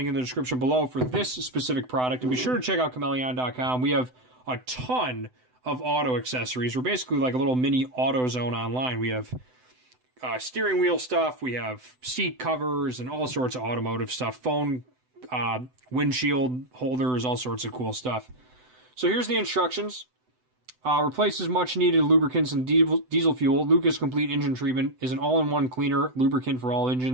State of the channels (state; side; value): late; left; 7.9 ms